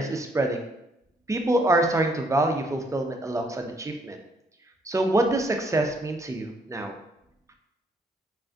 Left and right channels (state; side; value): normal; both; correlation 0.68